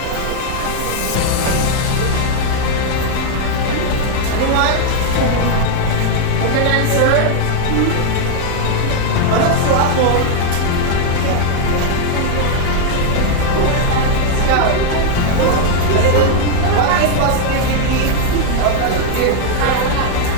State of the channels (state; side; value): different; both; correlation 0.00